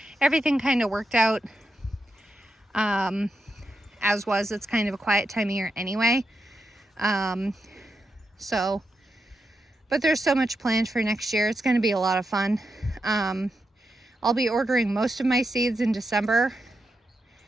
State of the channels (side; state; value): both; normal; correlation 0.86